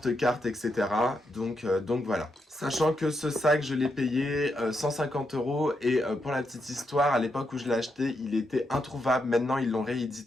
etc. Donc voilà. Sachant que ce sac, je l'ai payé 150 € et pour la petite histoire, à l'époque où je l'ai acheté, il était introuvable. Maintenant, ils l'ont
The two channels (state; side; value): normal; both; correlation 0.82